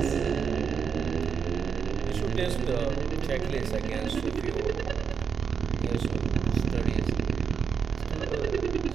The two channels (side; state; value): left; quieter; 6.5 dB